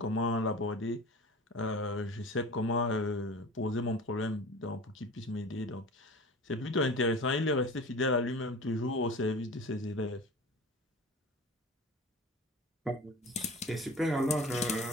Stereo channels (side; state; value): both; normal; correlation 0.36